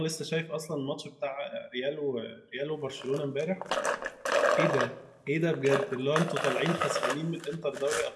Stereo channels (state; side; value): identical; both; correlation 1.00